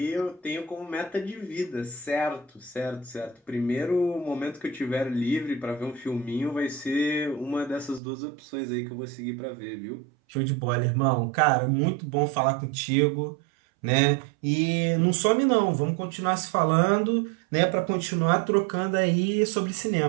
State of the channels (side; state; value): left; drops out; at 8.0 s